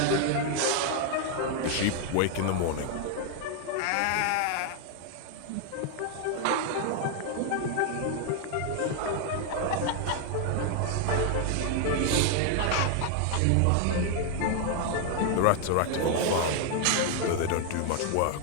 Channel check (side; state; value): both; different; correlation 0.00